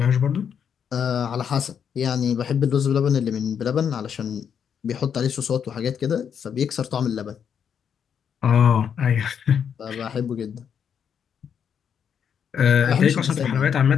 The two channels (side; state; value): right; quieter; 7.8 dB